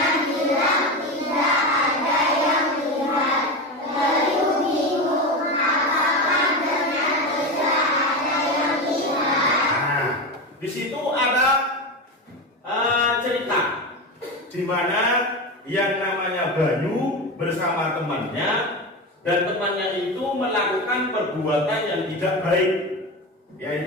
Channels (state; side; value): normal; both; correlation 0.20